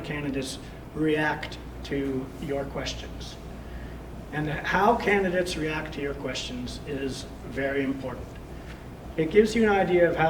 candidates react to your questions. And how candidates react to your questions is very important. It gives you an idea of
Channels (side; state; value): both; identical; correlation 1.00